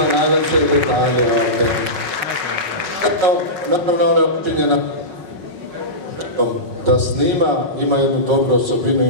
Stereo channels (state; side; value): late; left; 5.3 ms